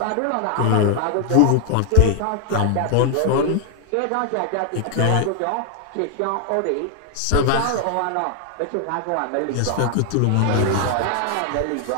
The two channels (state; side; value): different; both; correlation 0.00